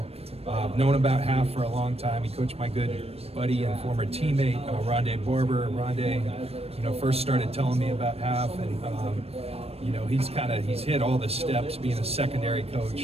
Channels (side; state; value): left; late; 0.29 ms